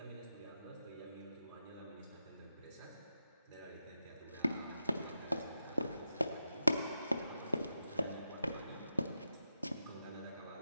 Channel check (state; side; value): inverted; both; correlation -0.89